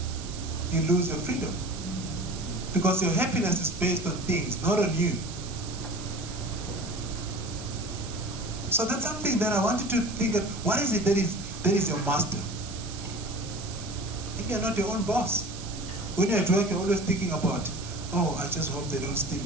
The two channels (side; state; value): right; noise; hiss, 12 dB below the sound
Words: you lose your freedom. Because your happiness is based on things, not on you. So that's something that I want you to think of. What is it that is your master? Maybe you're not your own boss. When you're at work, you're always thinking about, I just hope they don't steal